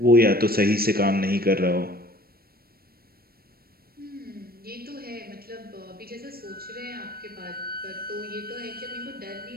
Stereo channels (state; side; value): late; left; 0.44 ms